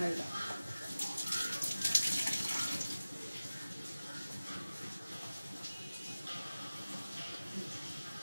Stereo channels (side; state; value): both; inverted; correlation -0.97